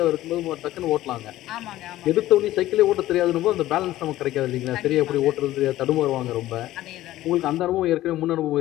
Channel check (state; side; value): quieter; right; 15.1 dB